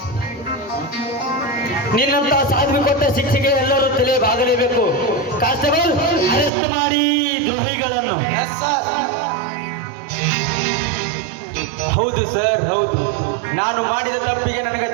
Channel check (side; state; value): left; drops out; at 6.5 s